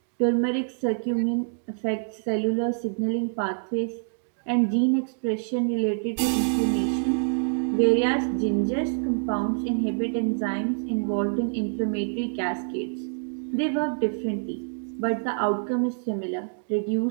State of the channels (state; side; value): silent; left; digital silence